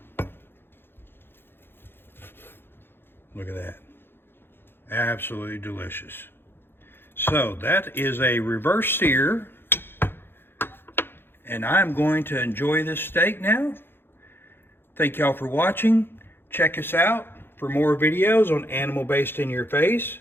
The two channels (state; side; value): late; right; 0.10 ms